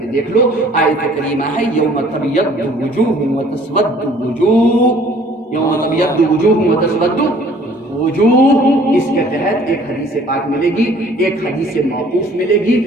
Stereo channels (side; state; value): both; normal; correlation 0.55